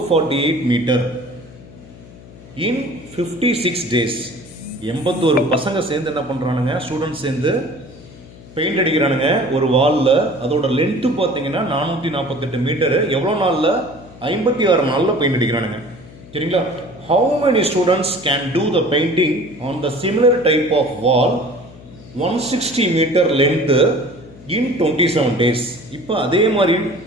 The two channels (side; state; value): left; noise; hum, 19 dB below the sound